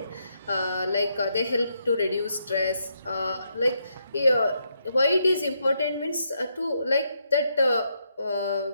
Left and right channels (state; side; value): inverted; both; correlation -0.78